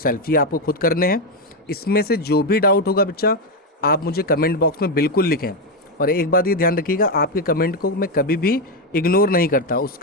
ये आपको खुद करने हैं। इसमें से जो भी डाउट होगा बच्चा, आप मुझे कमेंट बॉक्स में बिल्कुल लिखें। और एक बात ये ध्यान रखिएगा, आपके कमेंट को मैं कभी भी इग्नोर नहीं करता,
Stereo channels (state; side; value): normal; both; correlation 0.07